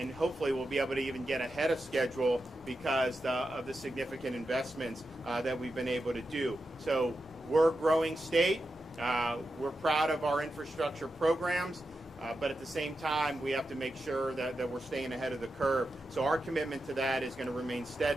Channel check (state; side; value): normal; both; correlation 0.89